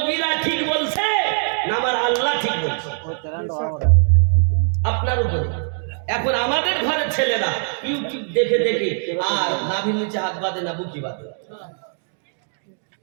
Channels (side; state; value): left; silent; 63 dB below the other